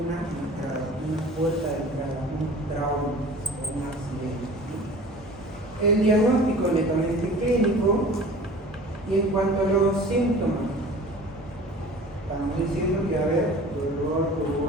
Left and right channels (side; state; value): both; normal; correlation 0.43